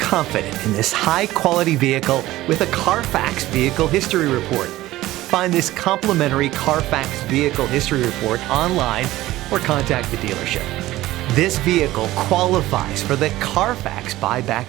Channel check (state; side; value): quieter; left; 16.5 dB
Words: confident in this high-quality vehicle with a Carfax Vehicle History Report. Find this complimentary Carfax Vehicle History Report online or contact the dealership. This vehicle qualifies for the Carfax